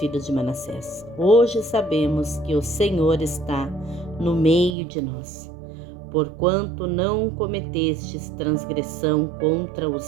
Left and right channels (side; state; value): left; drops out; at 4.8 s